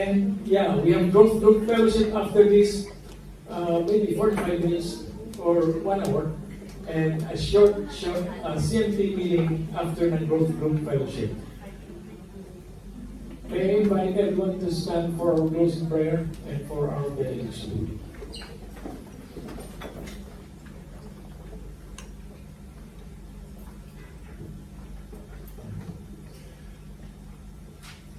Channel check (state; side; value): identical; both; correlation 1.00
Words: yeah, we have growth group fellowship after this, maybe 45 minutes or 1 hour. And a short CMT meeting after the growth group fellowship. May I invite everyone to stand for our closing prayer and for our benediction.